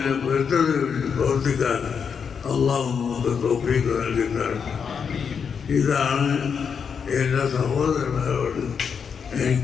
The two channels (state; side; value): quieter; right; 6.6 dB